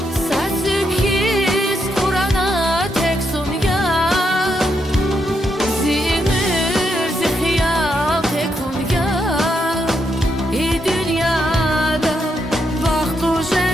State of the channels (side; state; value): both; normal; correlation 0.80